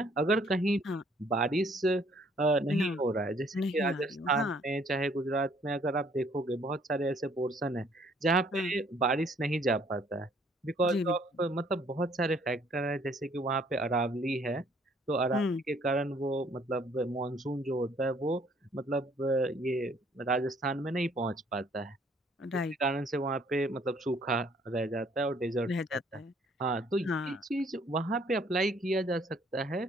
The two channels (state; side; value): normal; both; correlation 0.62